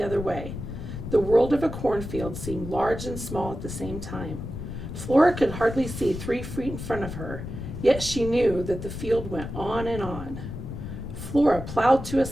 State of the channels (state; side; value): noise; left; rumble, 8 dB below the sound